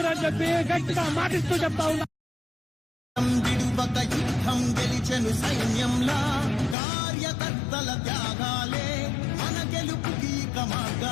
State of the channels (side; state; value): right; drops out; at 6.8 s